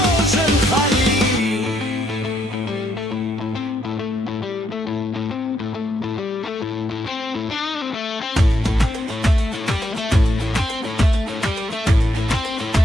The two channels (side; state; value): both; normal; correlation 0.76